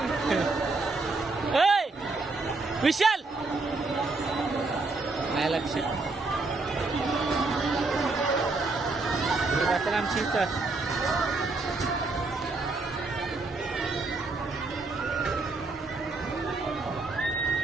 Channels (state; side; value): quieter; left; 3.5 dB